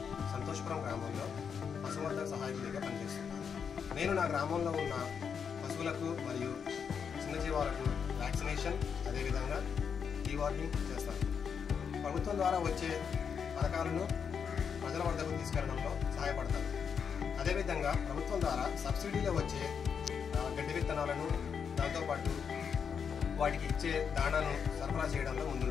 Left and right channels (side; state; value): right; quieter; 6.8 dB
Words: సంతోషపురం గ్రామంలో పశువర్ధక సహాయకుడిగా పనిచేస్తున్నాను. నేను నా గ్రామంలో ఉన్న పశువులకు మరియు చిన్నజీవాలకు వ్యాక్సినేషన్, అదేవిధంగా డీవార్మింగ్ చేస్తాను. ప్రభుత్వం ద్వారా వచ్చే పథకాలను ప్రజల వద్దకు తీసుకెళ్లడంలో సహాయపడతాను. అదేవిధంగా ప్రభుత్వం ద్వారా సబ్సిడీలో వచ్చే గడ్డి విత్తనాలను, దాంతోపాటు వాటికి ఇచ్చే దాణాను సరఫరా చేయడంలో